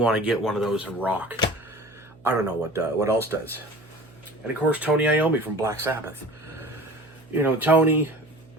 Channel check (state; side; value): noise; right; hum, 25 dB below the sound